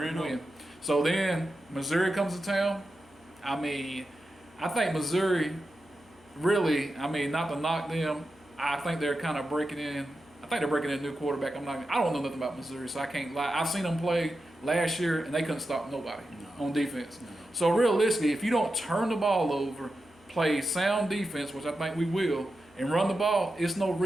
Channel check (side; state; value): left; noise; hum, 28 dB below the sound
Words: win. So then Missouri comes to town. I mean, I think Missouri really, I mean, not to knock them, I think they're kind of breaking in. I think they're breaking in a new quarterback. I don't know nothing about Missouri, so I can't lie. I've seen them play last year, and they couldn't stop nobody on defense. No. So realistically, if you don't turn the ball over, play sound defense, which I think we will, and run the ball, it's no